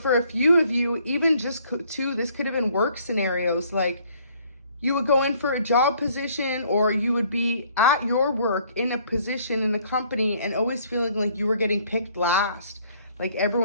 for a few of you, even just two, this could have been work scenarios. Like, you would go in for a job position, or you would be at your work in a position in a company and always feeling like you were getting picked last, like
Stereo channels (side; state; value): both; inverted; correlation -0.62